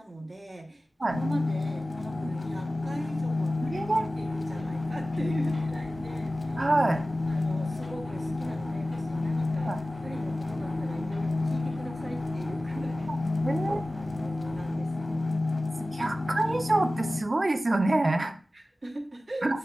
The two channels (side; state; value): both; normal; correlation 0.96